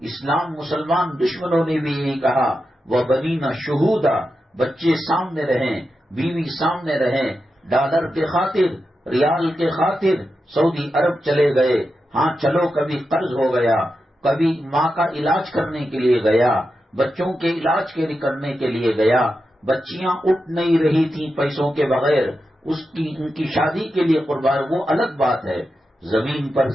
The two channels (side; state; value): both; normal; correlation 0.89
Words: اسلام مسلمان دشمنوں نے بھی یہی کہا وَبَنِينَ شُهُودًا، بچے سامنے رہیں، بیوی سامنے رہیں، ڈالر کے خاطر، ریال کے خاطر، سعودی عرب چلے گئے، ہاں چلو کبھی قرض ہو گیا، کبھی ماں کا علاج کرنے کے لیے گیا، بچوں کے علاج کے کرنے کے لیے گیا، بچیاں اٹھ نہیں رہی تھیں پیسوں کے بغیر، ان کی شادی کے لیے قربان، وہ الگ بات ہے۔ زمین پر